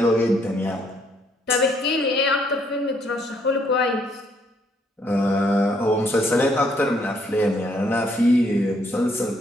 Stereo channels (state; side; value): normal; both; correlation 0.69